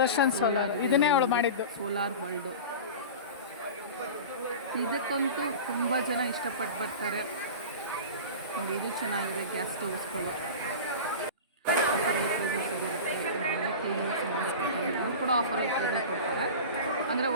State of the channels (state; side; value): inverted; both; correlation -0.31